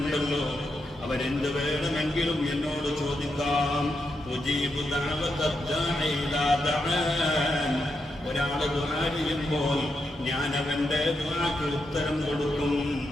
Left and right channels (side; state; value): both; normal; correlation 0.84